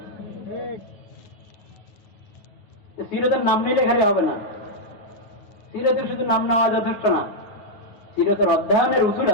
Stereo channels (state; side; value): late; right; 9.5 ms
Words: সিরতের নাম নিলে খালি হবে না, সিরতের শুধু নাম নেওয়া যথেষ্ট না, সিরতের অধ্যয়নের উসুল